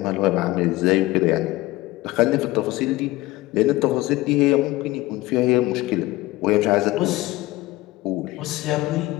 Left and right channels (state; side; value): quieter; right; 18.9 dB